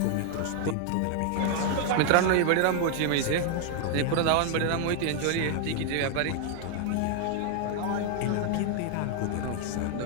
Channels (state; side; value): different; both; correlation 0.00